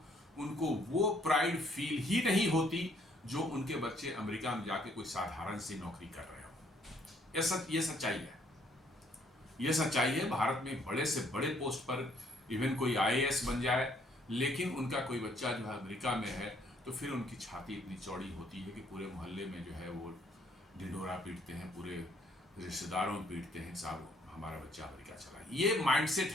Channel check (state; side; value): normal; both; correlation 0.65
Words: उनको वो प्राइड फील ही नहीं होती जो उनके बच्चे अमेरिका में जाके कोई साधारण सी नौकरी कर रहे हो। ये सच्चाई है। ये सच्चाई है। भारत में बड़े से बड़े पोस्ट पर इवन कोई IAS बन जाए, लेकिन उनका कोई बच्चा जो है अमेरिका में है, तो फिर उनकी छाती इतनी चौड़ी होती है कि पूरे मोहल्ले में जो है वो ढिंढोरा पीटते हैं, पूरे रिश्तेदारों में पीटते हैं, साहब हमारा बच्चा अमेरिका चला। ये माइंडसेट